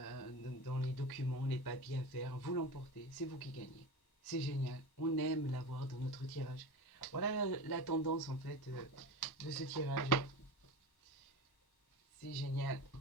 les documents, les papiers à faire, vous l'emportez, c'est vous qui gagnez. C'est génial, on aime l'avoir dans notre tirage. Voilà la tendance en fait de ce tirage. C'est génial.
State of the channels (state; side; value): late; right; 1.1 ms